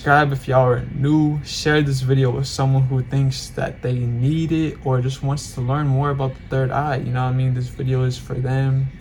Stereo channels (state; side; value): identical; both; correlation 1.00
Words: if y'all are new, share this video with someone who thinks that they need it or just wants to learn more about the third eye. You know what I mean? This video is for them.